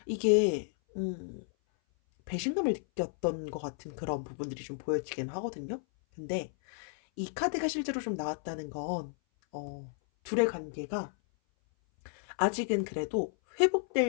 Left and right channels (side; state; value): right; silent; 56 dB below the other